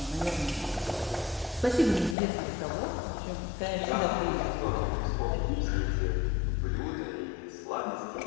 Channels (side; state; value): right; drops out; at 2.1 s